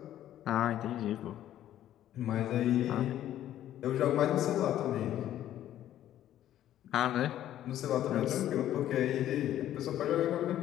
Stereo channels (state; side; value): quieter; right; 12.1 dB